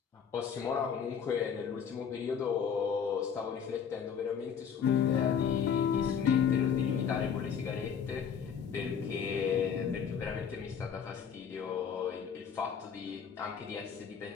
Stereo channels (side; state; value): right; quieter; 7.3 dB